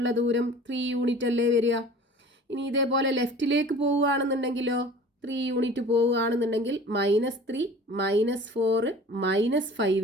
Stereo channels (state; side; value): normal; both; correlation 0.43